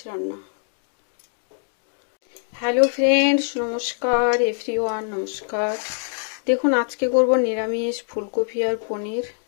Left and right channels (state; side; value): silent; right; digital silence